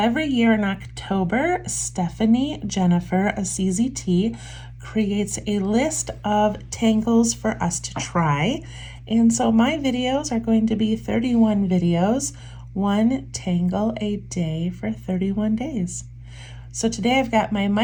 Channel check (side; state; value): both; identical; correlation 1.00